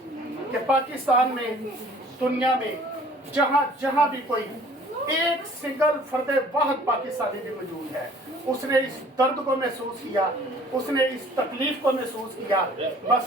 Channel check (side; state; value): both; normal; correlation 0.52